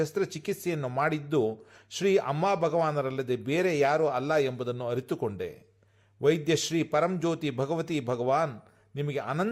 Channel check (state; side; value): identical; both; correlation 1.00